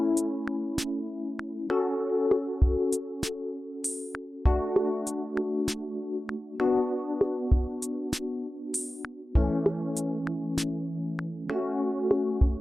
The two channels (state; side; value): normal; both; correlation 0.96